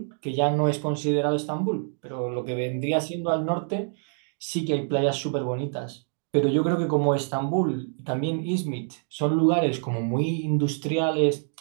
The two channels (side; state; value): left; silent; 61 dB below the other